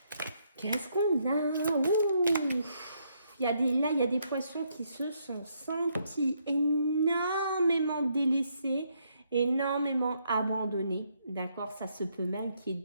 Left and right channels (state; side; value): inverted; both; correlation -0.74